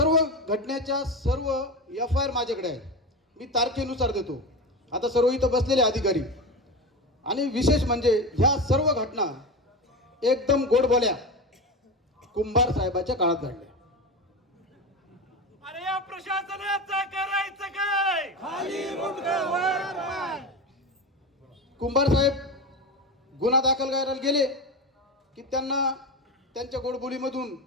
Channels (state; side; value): normal; both; correlation 0.22